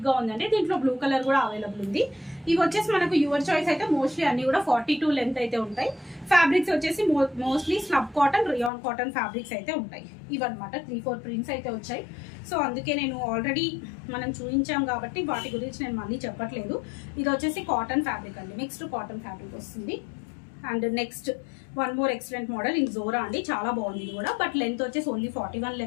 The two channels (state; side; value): drops out; right; at 8.7 s